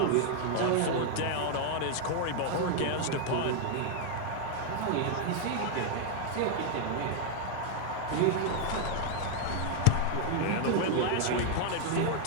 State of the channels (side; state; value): both; different; correlation 0.00